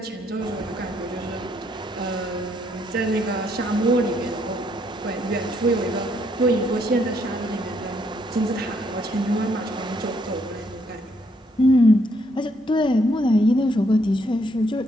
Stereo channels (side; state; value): both; normal; correlation 0.71